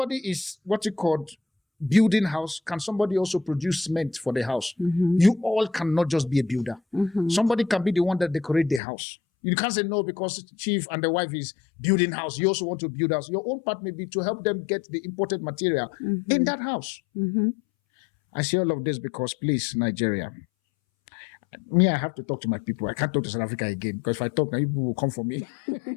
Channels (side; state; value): right; drops out; at 8.8 s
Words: is what you call building house, can somebody also produce cement for the house? You all cannot just be a builder. Somebody can be the one that decorate the house. You can't say no because Chief and the wife is building house. You also want to build house. Your own part may be to help them get the imported material in that house. I say all of this because, please, Nigeria, Me, I have to talk to my people. I can't talk to South Africa again because if I talk, now people will come for me.